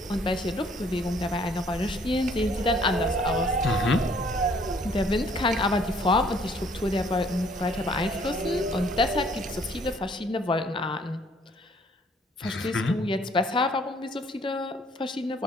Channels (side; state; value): both; normal; correlation 0.61